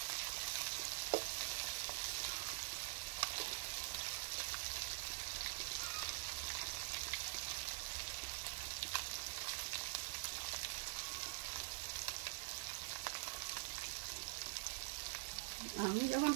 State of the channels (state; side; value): silent; left; digital silence